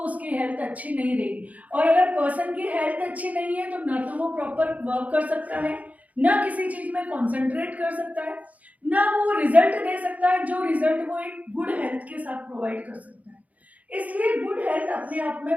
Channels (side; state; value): left; late; 0.072 ms